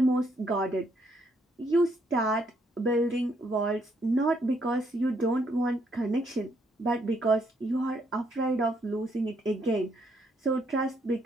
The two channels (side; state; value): both; normal; correlation 0.72